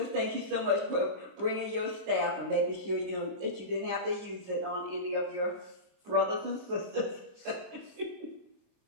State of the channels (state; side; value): late; left; 27 ms